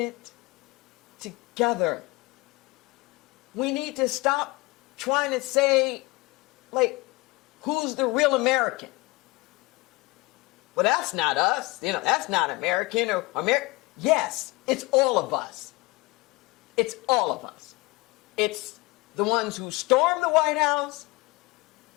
together. We need to stop trying to say, like, who's the real American? Well, that's not us. You know, that's not American or American. Yes, it's all of us. It's all of us. It's the ones who stormed the White House.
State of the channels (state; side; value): quieter; right; 23.5 dB